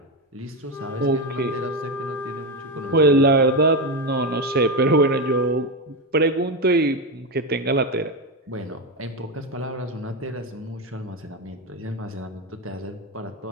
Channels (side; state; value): both; normal; correlation 0.12